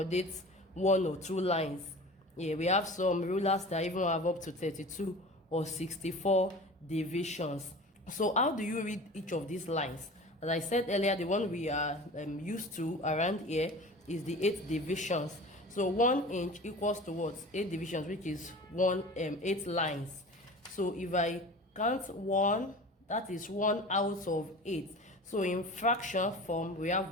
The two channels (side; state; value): both; normal; correlation 0.37